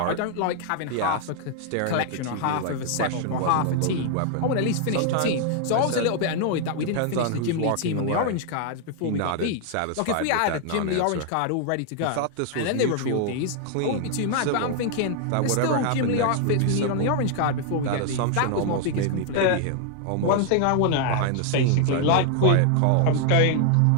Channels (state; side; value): different; both; correlation 0.00